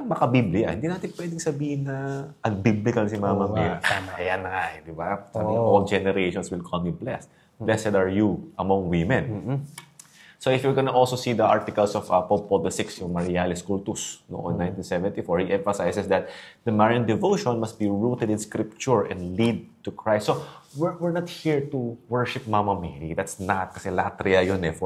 makabiblia. Hindi natin pwedeng sabihin na unbiblical si Mama Mary. Ayan na, di ba? Sabi niya, all generations will call me blessed. Blessed are you among women. So if you're gonna also see the articles of Pope Paul VI, yung Marialis Cultus, noong 1974, he emphasizes that the Marian devotion must be rooted in Scripture and lead to Christ. So we're not here to worship Mama Mary. That's not, kasi latria yun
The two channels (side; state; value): both; identical; correlation 1.00